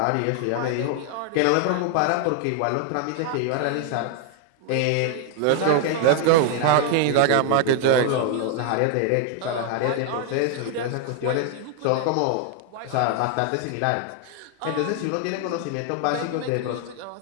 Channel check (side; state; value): both; different; correlation 0.00